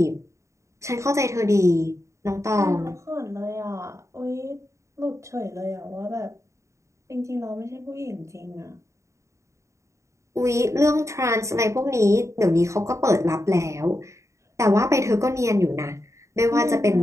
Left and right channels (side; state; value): left; late; 0.14 ms